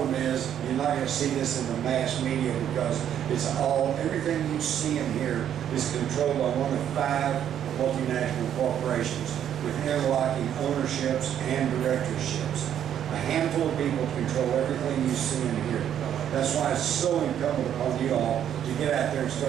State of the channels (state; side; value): quieter; left; 9.9 dB